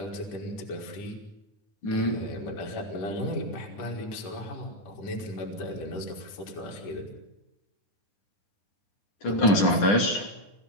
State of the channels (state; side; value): late; right; 9.8 ms